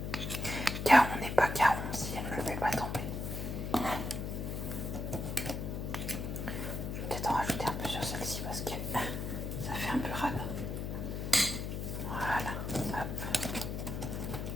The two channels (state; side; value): noise; left; hum, 4 dB below the sound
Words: car on n'est pas caron si elle ne le fait pas tomber. Je vais peut-être en rajouter un peu sur celle-ci parce que ça fait un peu rade. Voilà, hop.